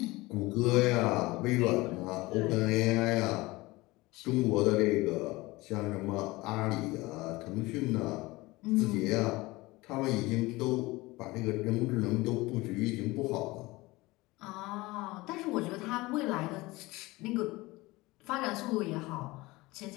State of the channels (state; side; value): quieter; right; 21.2 dB